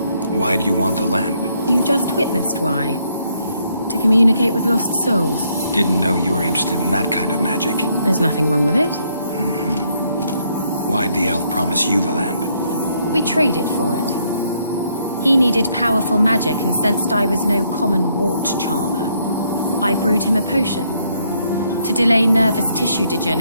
Why do you want the lamp? You just witnessed why. To communicate with lost souls. Didn't know you were interested in that kind of magic. There's nothing wrong with it. Why'd the elf promise you the lamp? We traded for it. He needed powerful magic and sensed I was no common wart charmer. I brewed him a potion. To delay nervous tissue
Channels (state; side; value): inverted; both; correlation -0.72